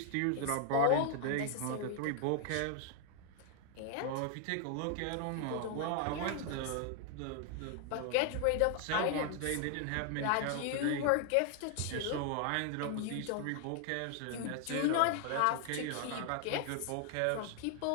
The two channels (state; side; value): different; both; correlation 0.00